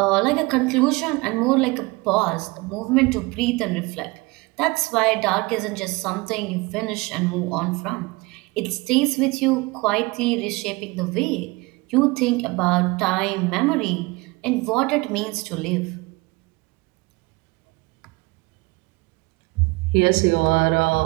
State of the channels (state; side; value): quieter; left; 24.1 dB